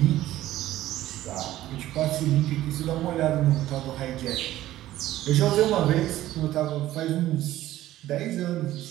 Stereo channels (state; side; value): quieter; left; 14.5 dB